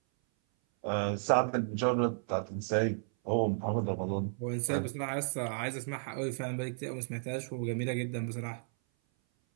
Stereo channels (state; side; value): silent; left; 55 dB below the other